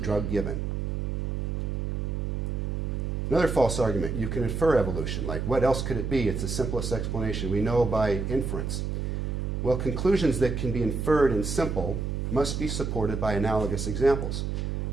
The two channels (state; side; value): noise; right; hum, 2 dB below the sound